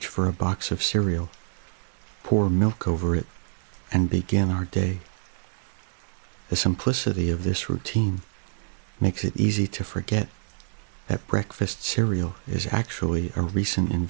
for a box of cereal, pour milk over it, and begin our day. The simplicity of this routine makes it easy to forget that breakfast cereal is actually a recent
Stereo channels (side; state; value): left; silent; digital silence